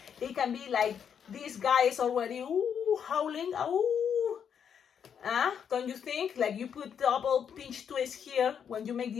it can be like this guy is already howling. Don't you think? Like you put double pinch twist here. When you make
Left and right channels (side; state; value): right; quieter; 7.8 dB